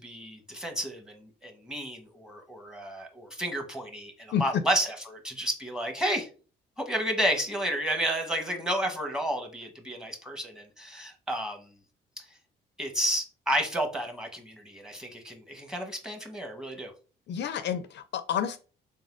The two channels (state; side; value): normal; both; correlation 0.49